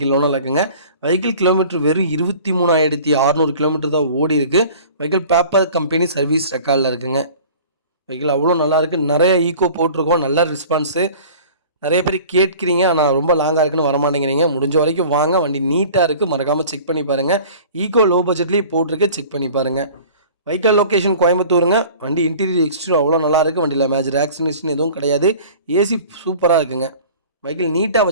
owner இருக்குங்க. வெஹிக்கிள் கிலோமீட்டர் வெறும் 23,600 கிலோமீட்டர் தான் ஓடி இருக்குது. வெஹிக்கிள் பேப்பர் கம்பெனி சர்வீஸ் ரெக்கார்டில் இருக்குங்க. வெஹிக்கிள் அவ்வளோ நல்லாயிருக்கு. நிறைய ஈக்கோ போட்டிருக்கோம். நல்ல ரெஸ்பான்ஸு. நிறைய பேர் கேட்குறீங்க, ஆனால் ரொம்ப லாங்காக இருக்குன்னு வரமாட்டேங்கிறீங்க. முடிஞ்ச வரைக்கும் வாங்க. வண்டி நீட்டாக இருக்குது. மறக்காமல் செக் பண்ணி பாருங்கள். ஈக்கோ லோ பட்ஜெட்லேயே போட்டிருக்கு. செக் பண்ணி பாருங்கள். வெஹிக்கிள் லொக்கேஷன் கோயம்புத்தூருங்க. வண்டி இன்டீரியர் எக்ஸ்டீரியர் அவ்வளோ நல்லாயிருக்கு. வண்டியில் மேஜர் ஆக்சிடென்ட் எதுவும் கிடையாது. ஏசி சூப்பராக இருக்குங்க. வெஹிக்கிள் நீட்டாக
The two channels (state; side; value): inverted; both; correlation -0.45